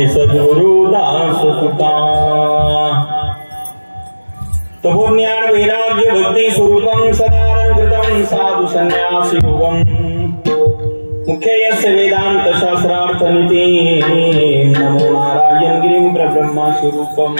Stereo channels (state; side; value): inverted; both; correlation -1.00